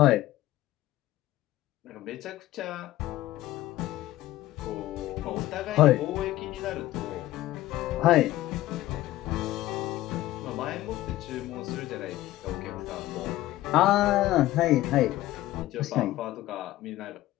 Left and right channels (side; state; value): right; quieter; 15.8 dB